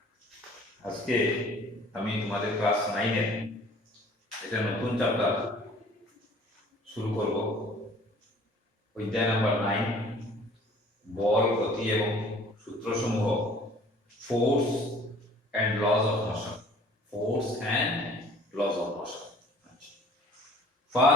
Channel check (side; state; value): both; normal; correlation 0.52